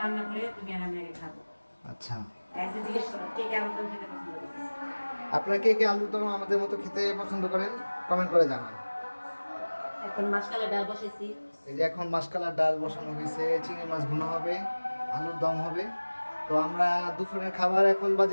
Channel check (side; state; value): both; inverted; correlation -1.00